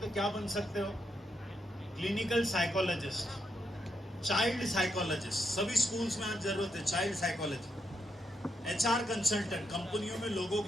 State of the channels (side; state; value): both; normal; correlation 0.81